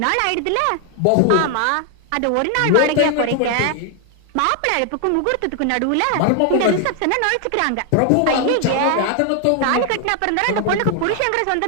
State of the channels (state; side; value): different; both; correlation 0.00